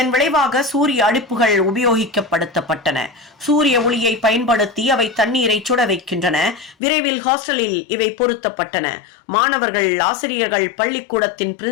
விளைவாக சூரிய அடுப்புகள் உபயோகிக்கப்படுத்தப்பட்டன. சூரிய ஒளியை பயன்படுத்தி அவை தண்ணீரை சுட வைக்கின்றன. விரைவில் ஹாஸ்டலில் இவை பொருத்தப்பட்டன. மாணவர்கள், ஆசிரியர்கள், பள்ளிக்கூடத்தின்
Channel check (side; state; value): right; drops out; at 6.8 s